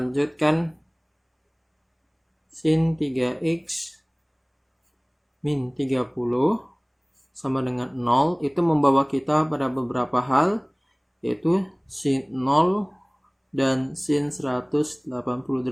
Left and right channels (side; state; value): both; identical; correlation 1.00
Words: sin 3x min 30 sama dengan 0 itu membawa kita pada beberapa hal, yaitu sin 0 dan sin 180